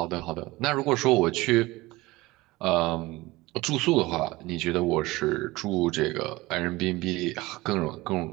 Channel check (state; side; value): quieter; left; 20.4 dB